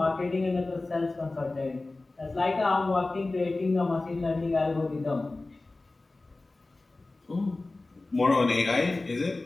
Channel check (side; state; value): right; quieter; 3.2 dB